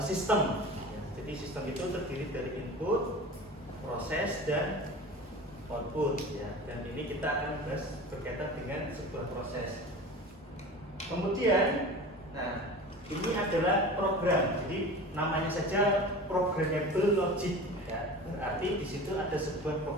sistem. Ya, jadi sistem itu terdiri dari input, proses, dan output. Ya. Dan ini kita akan bahas berkaitan dengan sebuah proses. Kemudian, nah ini adalah program. Jadi namanya saja programmable logic. Ya, berarti di situ ada sebuah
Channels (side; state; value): both; normal; correlation 0.35